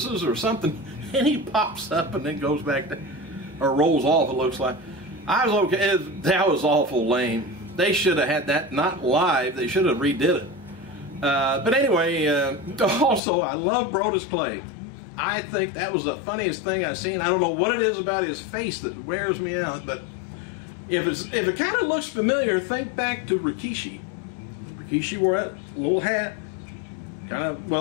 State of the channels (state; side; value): drops out; right; at 13.2 s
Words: or something, and he pops up and then goes back to, or rolls off, it looks like. I was okay. That was awful lame. They should have had that not live. They should have redid it. But anyway, also, I love Brodus Clay. I think that was the funniest thing I've seen. I don't know what it is about his face that wears me out, but if it kind of looks familiar, think back to Rikishi. Rikishi wore that little hat, kind of,